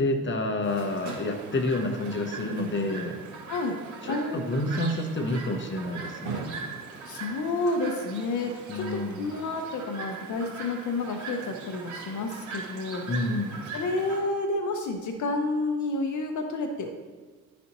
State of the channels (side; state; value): both; normal; correlation 0.22